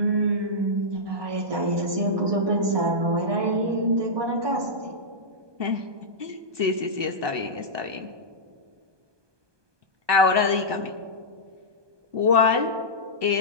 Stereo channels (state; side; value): late; left; 1.2 ms